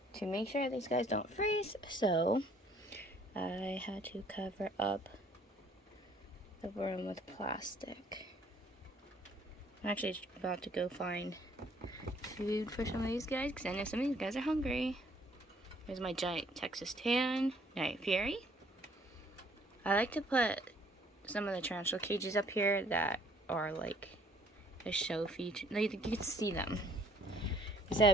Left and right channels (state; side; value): normal; both; correlation 0.61